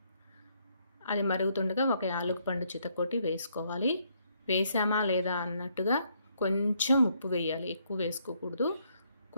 అది మరుగుతుండగా ఒక యాలకుపండు చితకొట్టి వేసుకోవాలి. వేసామా లేదా అన్నట్టుగా కొంచెం ఉప్పు వేయాలి, ఎక్కువ వేసుకోకూడదు.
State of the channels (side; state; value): both; inverted; correlation -0.71